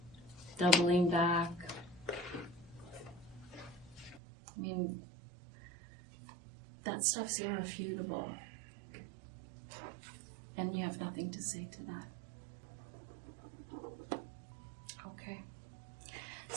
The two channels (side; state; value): left; drops out; at 4.2 s